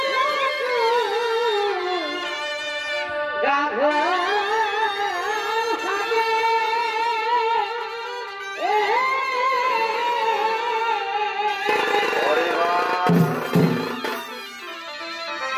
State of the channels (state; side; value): identical; both; correlation 1.00